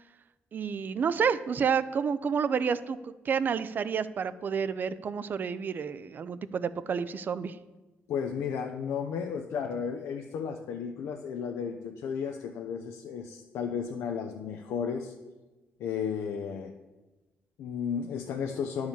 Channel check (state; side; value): normal; both; correlation 0.59